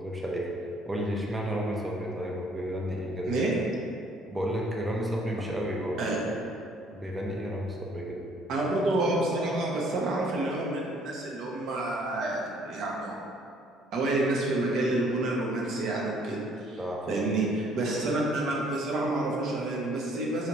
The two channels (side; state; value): both; normal; correlation 0.61